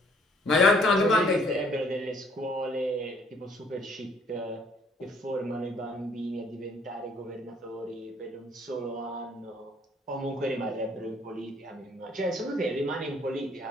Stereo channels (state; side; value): normal; both; correlation 0.62